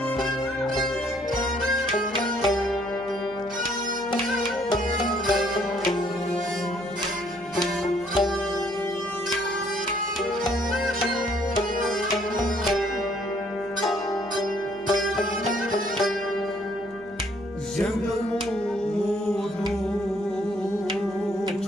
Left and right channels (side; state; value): right; noise; hum, 25 dB below the sound